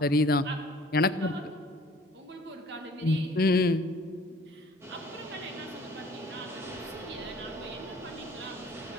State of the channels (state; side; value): normal; both; correlation 0.52